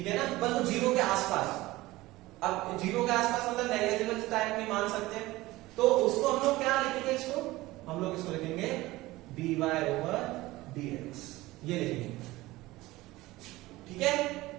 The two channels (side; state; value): left; quieter; 18.8 dB